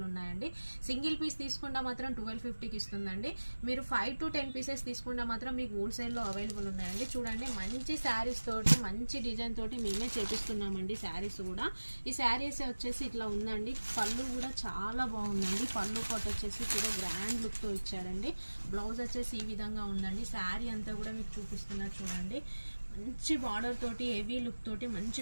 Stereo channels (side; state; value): both; inverted; correlation -1.00